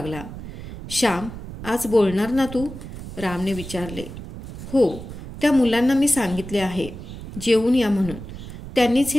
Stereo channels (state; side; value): noise; right; rumble, 11 dB below the sound